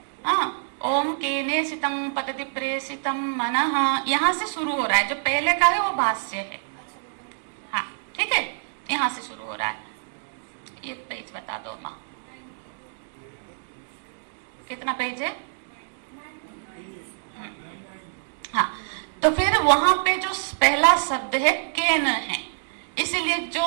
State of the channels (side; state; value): left; silent; digital silence